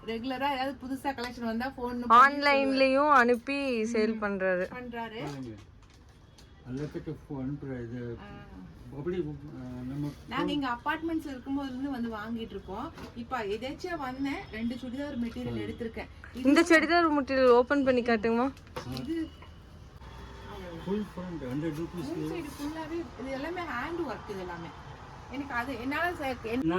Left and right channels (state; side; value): identical; both; correlation 1.00